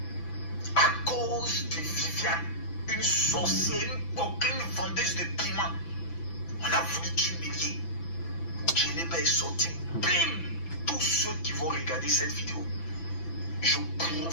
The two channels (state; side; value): late; right; 6.0 ms